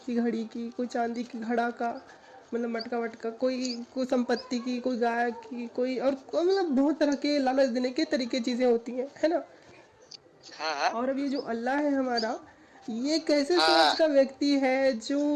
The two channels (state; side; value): identical; both; correlation 1.00